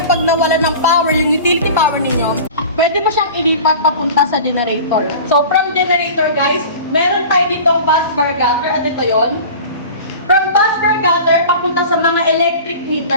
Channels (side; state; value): both; inverted; correlation -0.38